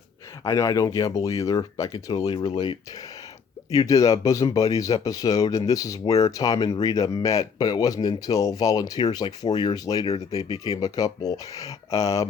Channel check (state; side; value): quieter; right; 6.2 dB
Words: I know I don't gamble either. I can totally relate. You did a Bosom Buddies episode, and this is where Tom and Rita met, but it wasn't until Volunteers like 4 years later that they became a couple.